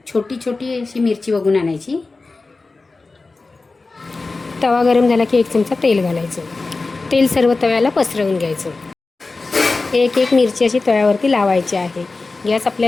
छोटी छोटी अशी मिरची बघून आणायची. तवा गरम झाला की 1 चमचा तेल घालायचं. तेल सर्व तव्याला पसरवून घ्यायचं. एक मिरची अशी तव्यावरती लावायची आहे. गॅस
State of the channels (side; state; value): right; quieter; 3.7 dB